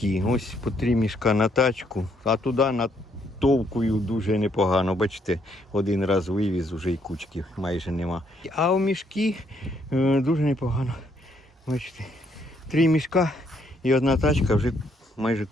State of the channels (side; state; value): both; normal; correlation 0.71